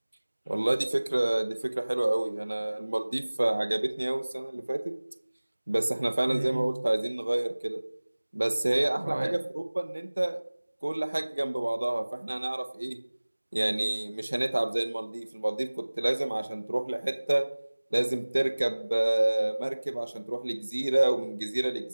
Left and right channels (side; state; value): both; inverted; correlation -1.00